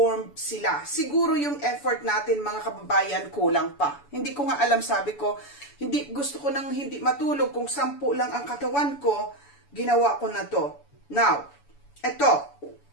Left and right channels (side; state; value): right; late; 7.0 ms